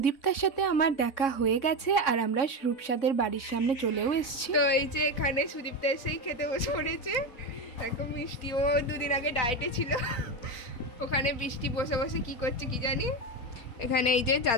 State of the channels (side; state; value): right; late; 3.6 ms